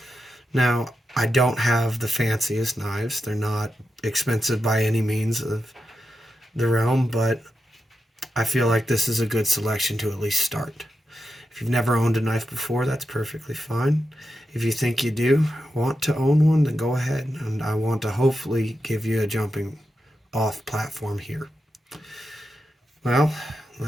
Now, I don't have the fanciest knives. They're not expensive by any means of the realm, but I feel like this is a good selection to at least start. If you've never owned a knife before, that's perfectly fine. If you think you do want to own one, then go ahead. And I want to hopefully give you a jumping off platform here. Well,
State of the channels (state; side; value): normal; both; correlation 0.88